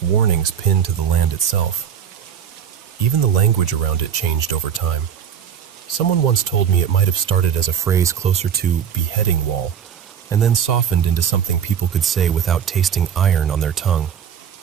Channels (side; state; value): left; quieter; 8.3 dB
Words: warnings pinned to the land itself. Even the language around it changed over time. Someone once told me it might have started as a phrase closer to beheading wall, and then softened into something people could say without tasting iron on their tongue.